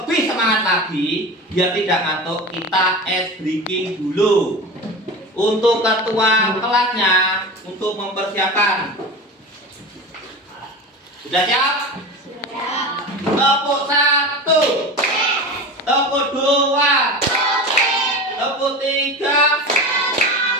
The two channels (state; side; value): normal; both; correlation 0.29